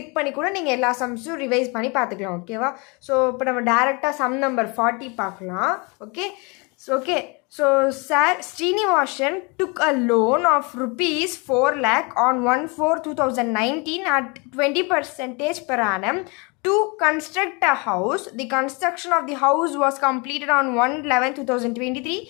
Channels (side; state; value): right; quieter; 29.9 dB